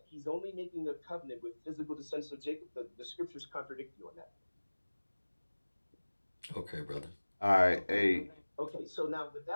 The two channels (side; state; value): both; inverted; correlation -1.00